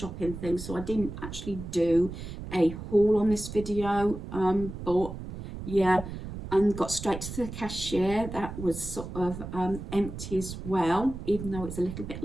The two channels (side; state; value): right; noise; rumble, 9 dB below the sound